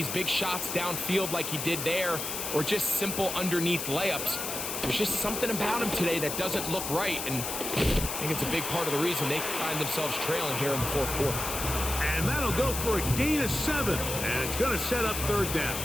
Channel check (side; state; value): left; noise; hiss, 4 dB below the sound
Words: big shots downfield like he did there or just simple underneath layups, there's just something about him today that doesn't look right. And I think it's a big part of the reason they find themselves trailing here in the 4th quarter. And that'll go for a gain of 7. And it's going to set up 3rd down.